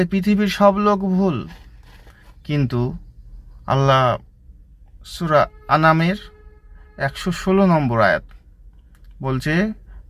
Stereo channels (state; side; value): identical; both; correlation 1.00